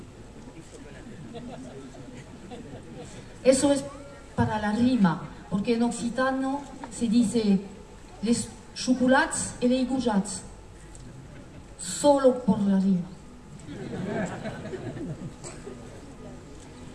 Eso es para la rima, porque en occitano se dice les chocolats et les goujats, solo por la rima.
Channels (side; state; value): both; identical; correlation 1.00